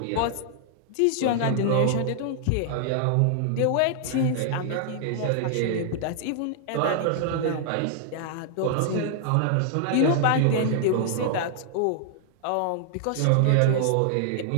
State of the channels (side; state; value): both; different; correlation -0.01